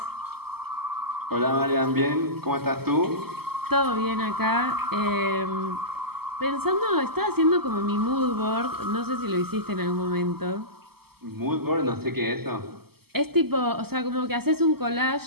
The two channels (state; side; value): late; left; 0.96 ms